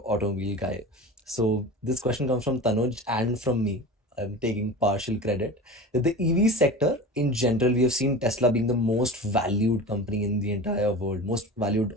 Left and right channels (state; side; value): normal; both; correlation 0.32